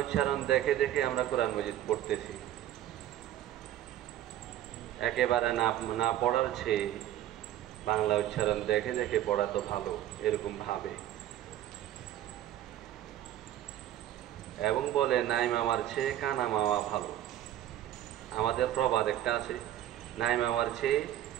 দেখে দেখে আমরা কোরআন মাজিদ পড়তেছি। একেবারে না পড়ার চেয়ে বাংলা উচ্চারণ দেখে দেখে পড়া তো ভালো, এরকম ভাবে। এবং বলে নাই মামার চেয়ে কানা মামা ভালো। আমাদের প্রবাদ একটা আছে, নাই মামার চেয়ে,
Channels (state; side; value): quieter; left; 12.6 dB